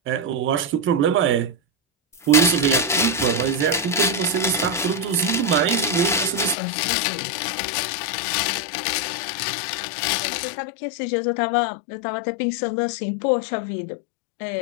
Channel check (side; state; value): right; drops out; at 6.6 s